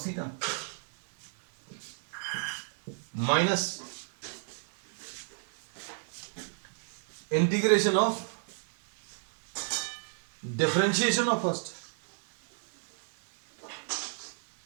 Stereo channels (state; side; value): silent; left; digital silence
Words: theta, minus integration of differentiation of first,